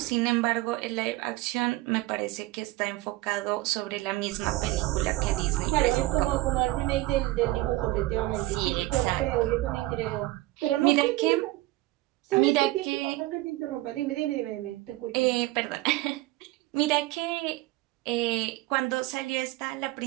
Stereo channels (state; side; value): quieter; left; 18.4 dB